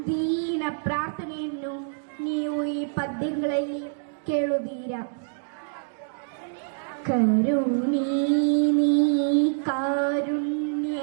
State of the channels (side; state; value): left; silent; digital silence